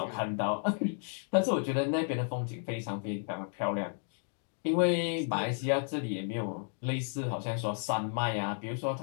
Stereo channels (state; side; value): silent; right; 56 dB below the other